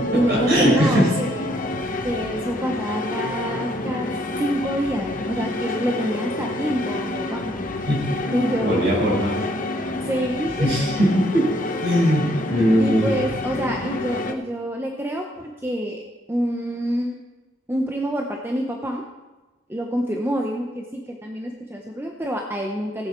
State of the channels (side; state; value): both; normal; correlation 0.70